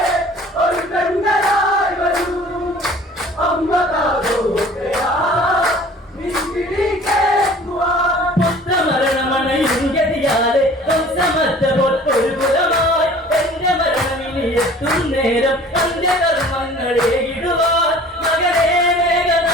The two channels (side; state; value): both; normal; correlation 0.48